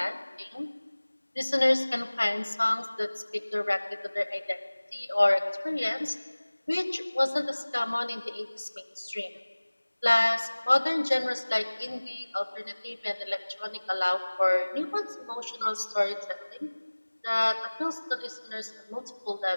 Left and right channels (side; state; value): both; inverted; correlation -1.00